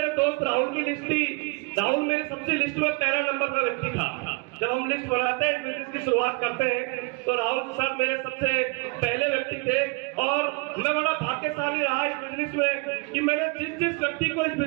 दोस्त राहुल की लिस्ट थी। राहुल मेरे सबसे लिस्ट में पहला नंबर का व्यक्ति था। जब हम लिस्ट बनाते हैं, बिजनेस की शुरुआत करते हैं, तो राहुल सर मेरे सबसे पहले व्यक्ति थे और मैं बड़ा भाग्यशाली रहा इस बिजनेस में कि मैंने जिस व्यक्ति को इस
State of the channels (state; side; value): quieter; left; 30.0 dB